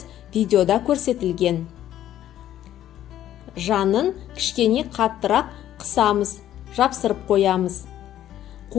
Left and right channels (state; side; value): quieter; right; 12.0 dB